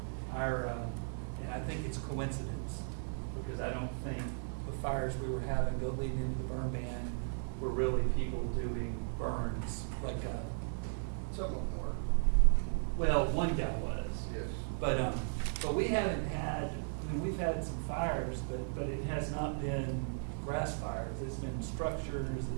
and I think it's coincidence, because I don't think the fires we were having go leading into the burn ban were really people doing burns, like Some of them were. well, one guy was. Yes. But we haven't had, I mean, we've had some fires, but it has not been grass fires. It's been structures, it's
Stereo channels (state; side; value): silent; left; digital silence